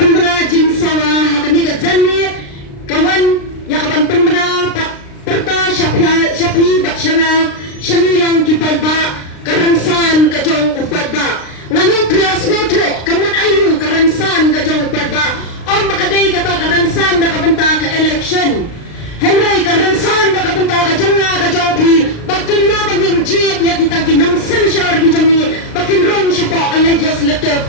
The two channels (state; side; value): late; right; 36 ms